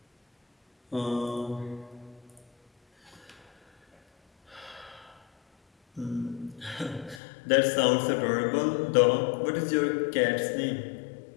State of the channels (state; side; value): drops out; right; at 7.2 s